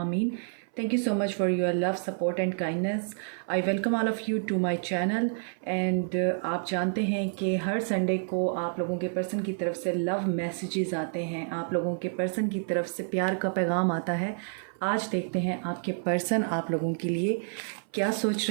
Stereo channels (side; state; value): left; silent; 57 dB below the other